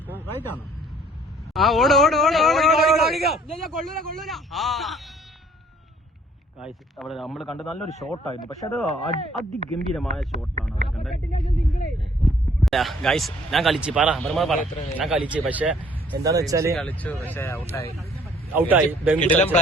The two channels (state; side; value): normal; both; correlation 0.59